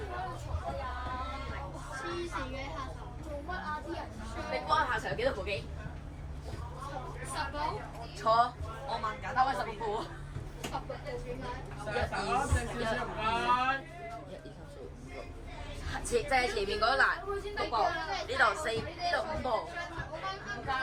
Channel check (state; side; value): identical; both; correlation 1.00